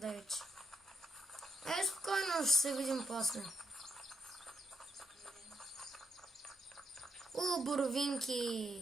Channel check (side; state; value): both; normal; correlation 0.77